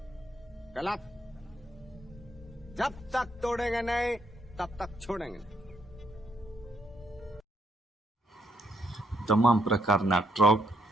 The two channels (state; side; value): normal; both; correlation 0.73